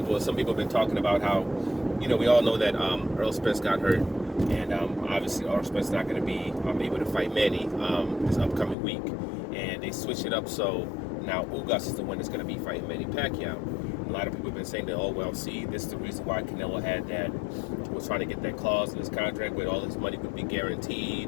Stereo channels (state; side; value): drops out; right; at 8.8 s